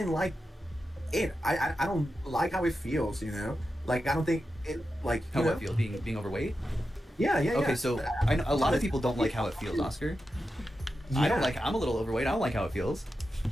like it. I don't like how it feels, you know? Like, I don't think it, like... How it feels, being overweight? Yeah. Okay, so I know a lot of people don't like how it feels, Oscar. Yeah. I'm a little overweight. I don't like how it feels.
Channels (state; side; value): normal; both; correlation 0.90